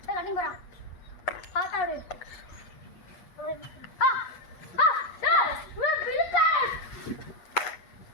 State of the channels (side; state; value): right; late; 8.4 ms